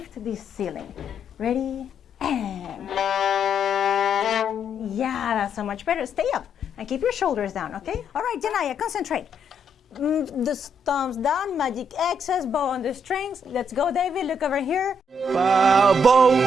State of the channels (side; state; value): both; normal; correlation 0.74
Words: this ceiling. Ready, and yeah, that's so much better. Stay up and keep your shoulders down, okay? All right, Janaya, concentrate. The thumbs down, magic X's, bow on the strings. Let's go, David, look over here.